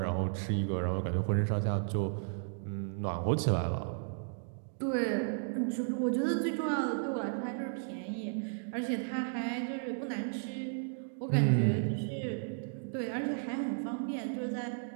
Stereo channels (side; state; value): left; silent; digital silence